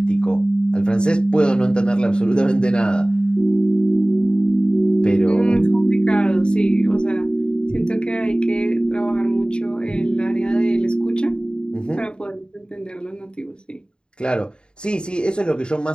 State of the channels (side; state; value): right; late; 0.050 ms